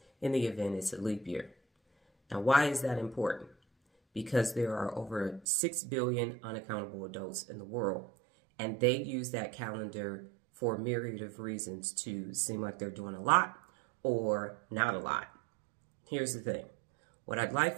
in the event it's a leap year. Now, why is that important? Because there are over 6 billion unaccountable adults in the world, and they use that calendar for a myriad of reasons to seem like they're doing a lot or not a lot. Here's the thing. What I'd like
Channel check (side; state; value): left; drops out; at 5.5 s